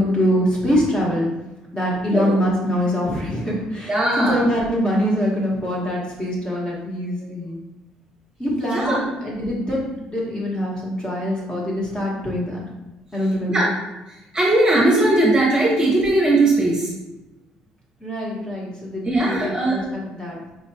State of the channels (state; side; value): normal; both; correlation 0.70